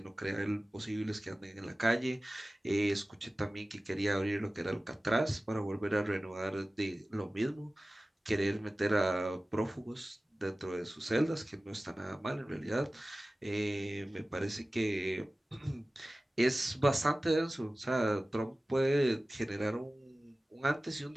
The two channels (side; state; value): both; normal; correlation 0.96